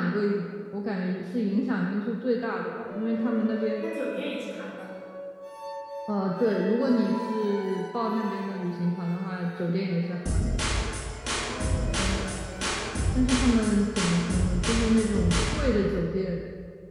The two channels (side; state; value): both; identical; correlation 1.00